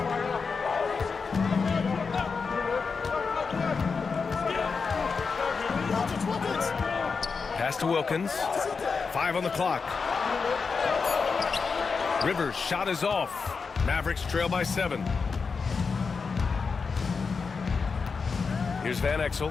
Pass to Wilkins. 5 on the clock. Rivers' shot is off. Mavericks trail by 7. Here's Van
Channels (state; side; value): quieter; right; 5.1 dB